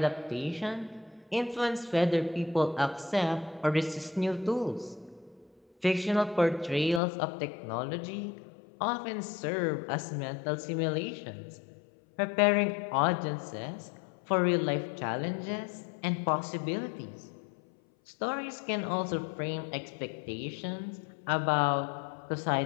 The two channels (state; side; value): drops out; right; at 7.0 s